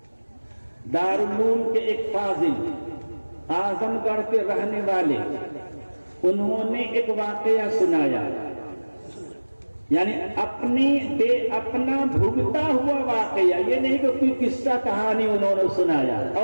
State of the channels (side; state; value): both; inverted; correlation -1.00